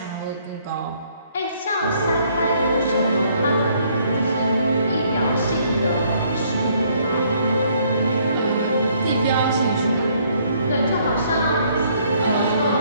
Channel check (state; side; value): inverted; both; correlation -0.65